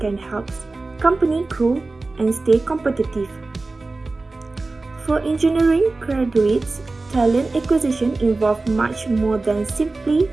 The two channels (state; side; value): quieter; left; 3.4 dB